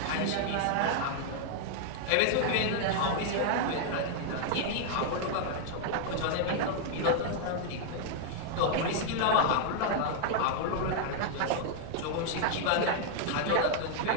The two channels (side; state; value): both; different; correlation 0.00